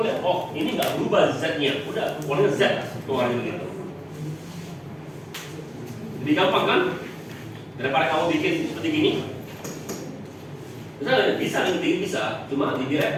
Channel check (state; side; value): identical; both; correlation 1.00